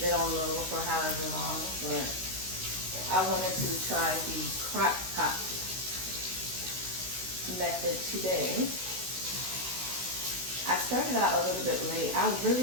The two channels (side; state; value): left; late; 16 ms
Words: it on low for however long. But I wanted to try the crock pot method today. I started out a little bit late. I